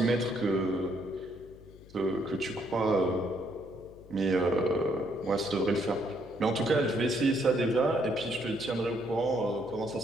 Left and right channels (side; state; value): left; noise; hum, 21 dB below the sound